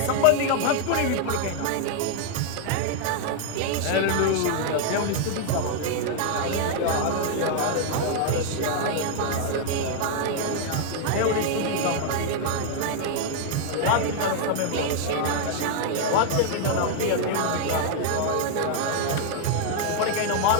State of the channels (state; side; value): different; both; correlation 0.00